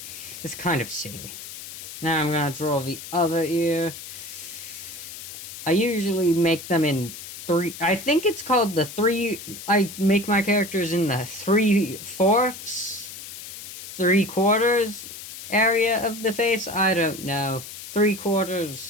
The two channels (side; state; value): left; noise; hiss, 12 dB below the sound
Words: It's kind of silly. Now I'm gonna draw the other ear. I usually make them in three. I think it's called the three. I make my characters in the 3/4, 3/4 area of the face. I don't know.